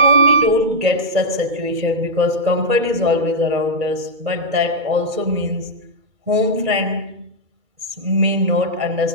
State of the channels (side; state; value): left; late; 2.3 ms